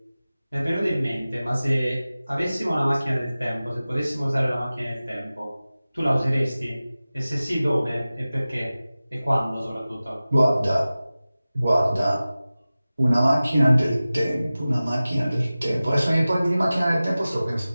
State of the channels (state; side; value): inverted; both; correlation -0.97